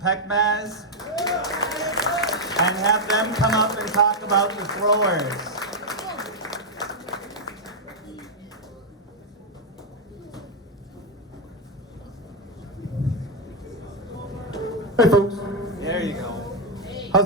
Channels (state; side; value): normal; both; correlation 0.00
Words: and have them come up and talk about the throwers. Hey folks, There you go.